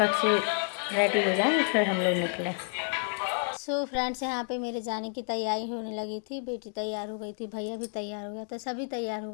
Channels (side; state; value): right; silent; 58 dB below the other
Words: से रेडी हो जाए फिर हम लोग निकले। सो फ्रेंड्स, यहाँ पे मेरे जाने की तैयारी होने लगी थी। बेटी तैयार हो गई थी, भैया भी तैयार हो गया था, सभी तैयार हो